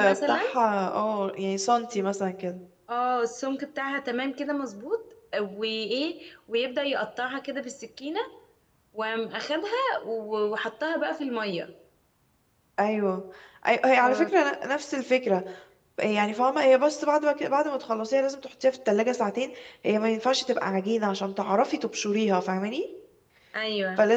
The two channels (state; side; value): identical; both; correlation 1.00